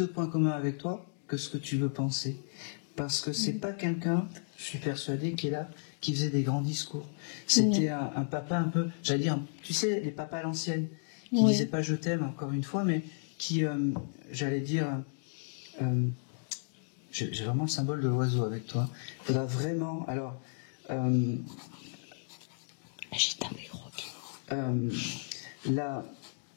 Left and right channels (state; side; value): silent; right; digital silence